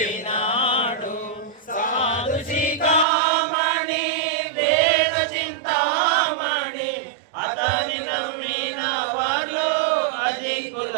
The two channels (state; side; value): drops out; left; at 3.1 s